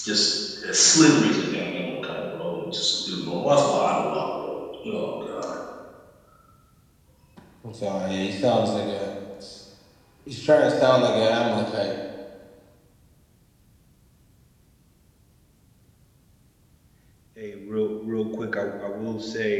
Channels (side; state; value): both; identical; correlation 1.00